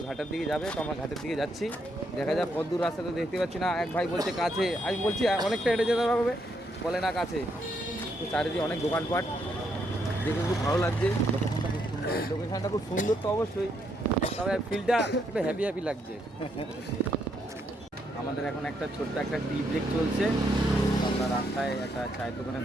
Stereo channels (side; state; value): both; normal; correlation 0.76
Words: ঘাটের দিকে যাবে, তো আমরা ঘাটের দিকে যাচ্ছি। দেখা যাক কত দূর রাস্তা তো দেখতে পাচ্ছি না। এক ভাই বলছে কাছে, আমি বলছি অনেকটা হেঁটে যেতে হবে, বলে না কাছে। তো চারিদিকে অনেক দোকানপাট দেখে খুব ভালো লাগছে। লোকেশনটা খুব সুন্দর তো অবশ্যই, তবে ফিলটা একটু হ্যাপি লাগছে। আমাদের এখন একটা ছোট্ট একটা টি ব্রেক চলছে। আমরা রাস্তায় একটা চায়ের দোকানে